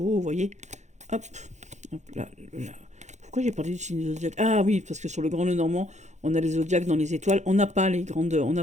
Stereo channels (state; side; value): late; left; 0.34 ms